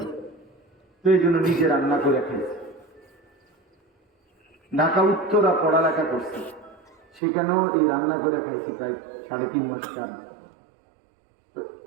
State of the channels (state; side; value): drops out; left; at 7.2 s